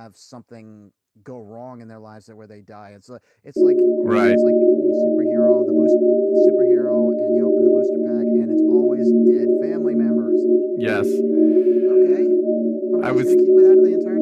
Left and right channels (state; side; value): identical; both; correlation 1.00